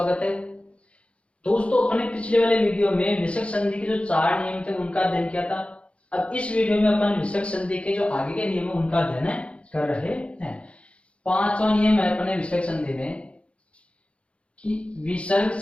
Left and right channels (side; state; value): right; late; 0.060 ms